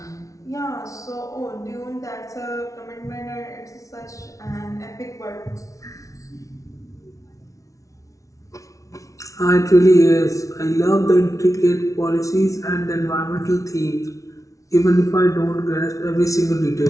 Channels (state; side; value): late; right; 0.16 ms